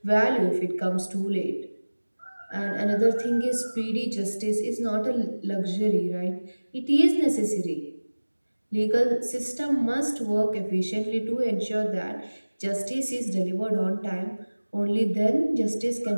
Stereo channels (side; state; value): both; inverted; correlation -1.00